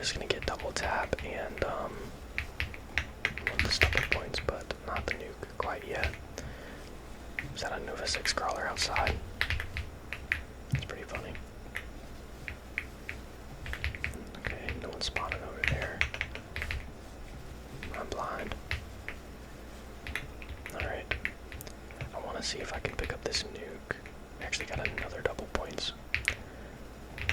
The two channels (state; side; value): identical; both; correlation 1.00